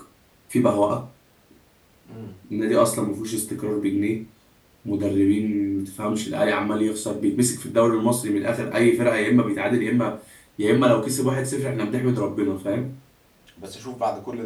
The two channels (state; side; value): identical; both; correlation 1.00